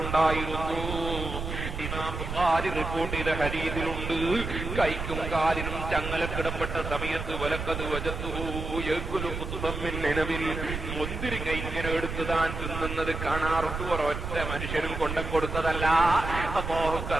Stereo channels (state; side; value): noise; right; rumble, 5 dB below the sound